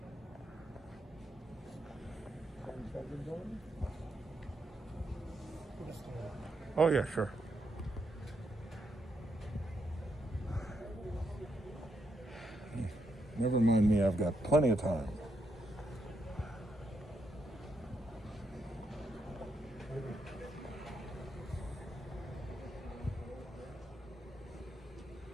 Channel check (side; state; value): both; normal; correlation 0.79